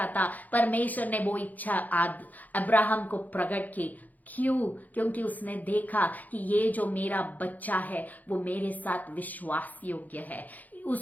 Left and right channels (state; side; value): late; right; 0.081 ms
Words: था, परमेश्वर ने वो इच्छा अब्राहम को प्रकट की। क्यों? क्योंकि उसने देखा कि ये जो मेरा बच्चा है वो मेरे साथ विश्वास योग्य है।